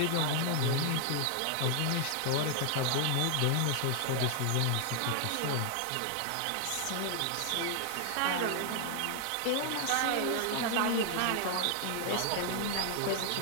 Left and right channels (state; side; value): different; both; correlation 0.00